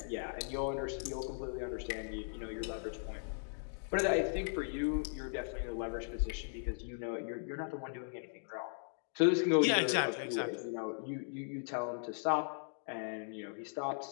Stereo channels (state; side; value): silent; right; digital silence